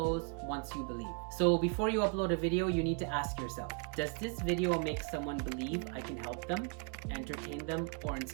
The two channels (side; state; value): left; quieter; 36.4 dB